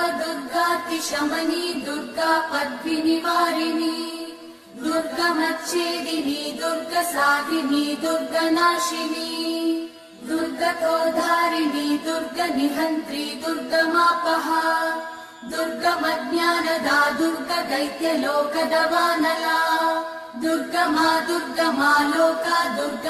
दुर्गातिशमनी दुर्गा पद्विनिवारिणी दुर्गमच्छेदिनी दुर्गसाधिनी दुर्गनाशिनी दुर्गतोद्धारिणी दुर्गनिहन्त्री दुर्गमापहा दुर्गमज्ञानदा दुर्गदैत्यलोकदवानला दुर्गमा दुर्गमा लोका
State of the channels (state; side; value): identical; both; correlation 1.00